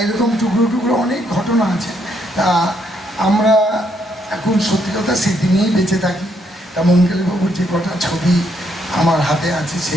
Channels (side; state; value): both; normal; correlation 0.74